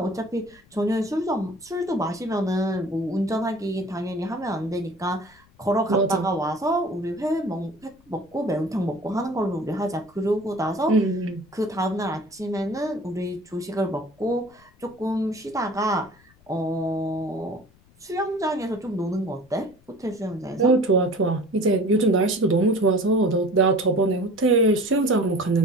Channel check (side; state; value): left; noise; rumble, 30 dB below the sound